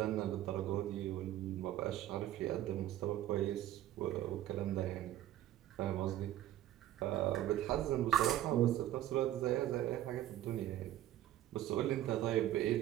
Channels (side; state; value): left; quieter; 13.3 dB